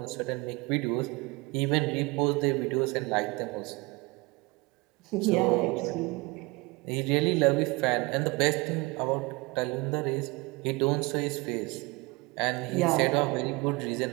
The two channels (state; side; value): quieter; left; 25.0 dB